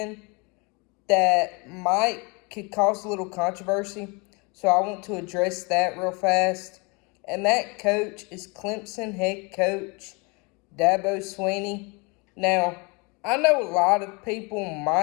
that could cause a little controversy. So I want to address that real fast. And that coach is Clemson head coach Dabo Swinney. Now, I know a lot of people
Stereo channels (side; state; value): right; quieter; 29.6 dB